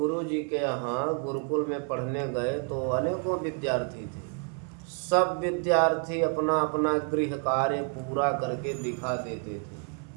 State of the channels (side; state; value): left; quieter; 39.3 dB